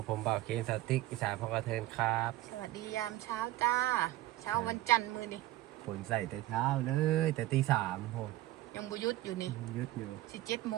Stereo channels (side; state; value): left; quieter; 16.2 dB